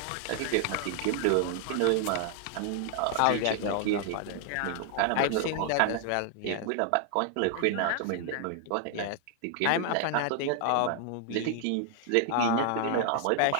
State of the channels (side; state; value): both; different; correlation 0.00